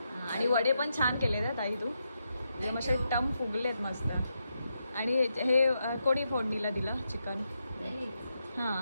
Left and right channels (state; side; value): inverted; both; correlation -0.83